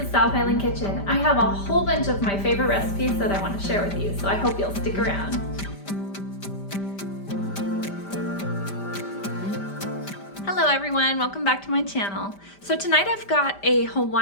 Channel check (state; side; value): late; right; 5.1 ms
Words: South Island Kitchen. I have a whole bunch of my favorite recipes that I want to share with you, so I hope you'll stick around. Hello everyone, welcome back to my channel. So tonight I've got a